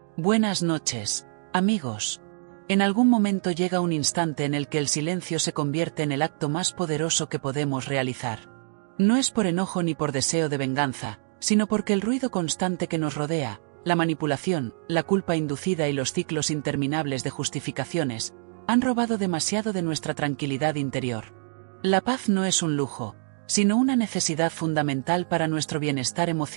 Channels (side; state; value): left; silent; digital silence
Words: Buenas noches, amigos. En algún momento llega un instante en el que el silencio se convierte en el acto más poderoso que podemos realizar. No es por enojo ni por deseo de venganza, sino porque el ruido constante que nos rodea, la manipulación, la culpa inducida y los ciclos interminables de justificaciones, han robado demasiado de nuestra tranquilidad interior. La paz no es un lujo, sino una necesidad fundamental para nuestro bienestar